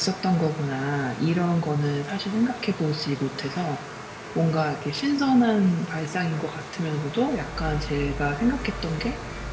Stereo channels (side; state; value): both; identical; correlation 1.00